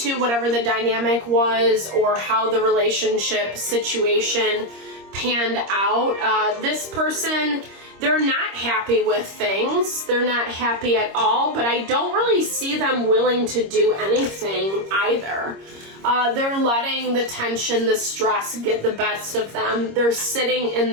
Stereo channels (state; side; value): late; left; 26 ms